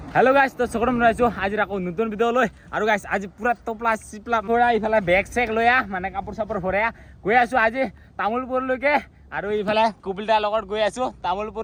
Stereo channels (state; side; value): identical; both; correlation 1.00